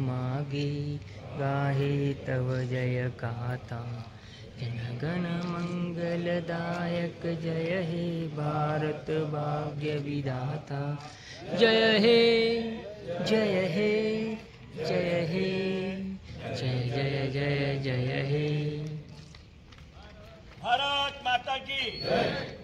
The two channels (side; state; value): both; identical; correlation 1.00